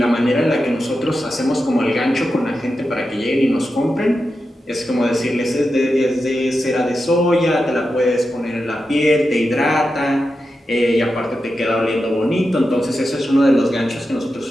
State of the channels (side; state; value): both; normal; correlation 0.89